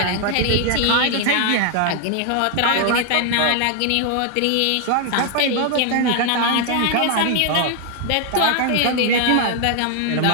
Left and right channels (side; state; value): both; different; correlation 0.00